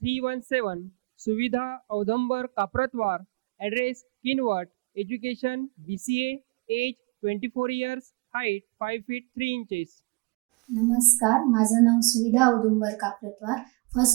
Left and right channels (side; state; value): left; quieter; 27.2 dB